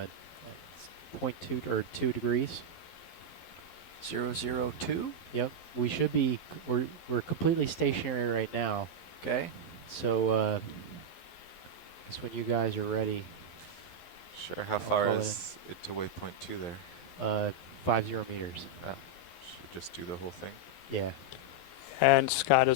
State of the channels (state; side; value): late; right; 12 ms